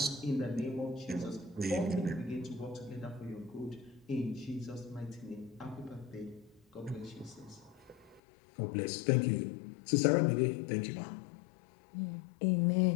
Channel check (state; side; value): drops out; right; at 8.2 s